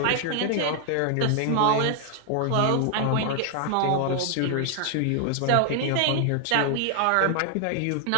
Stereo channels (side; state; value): both; different; correlation 0.00